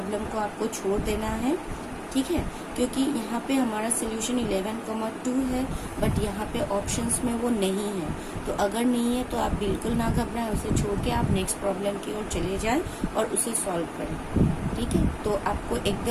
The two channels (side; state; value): both; identical; correlation 1.00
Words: को आपको छोड़ देना है, ठीक है। क्योंकि यहाँ पे हमारा सोल्यूशन 11,2 है, बट यहाँ पे ऑप्शंस में वो नहीं है। तो अगर नहीं है तो आप बिल्कुल ना घबराएं, उसे छोड़ के आप नेक्स्ट प्रॉब्लम की ओर चले जाएं और उसे सॉल्व करें, ठीक है। तो आपको